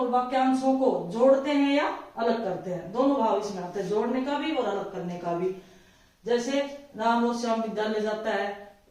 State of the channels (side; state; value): both; identical; correlation 1.00